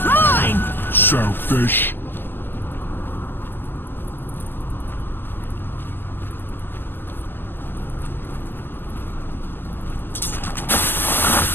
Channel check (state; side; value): late; right; 0.097 ms